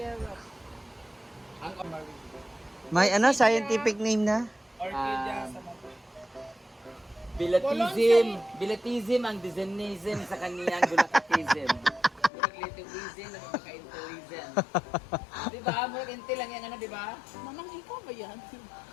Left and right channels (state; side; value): drops out; right; at 12.3 s